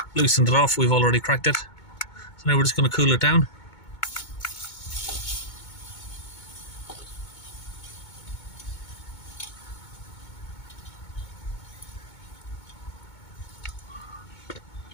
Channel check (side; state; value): right; late; 2.2 ms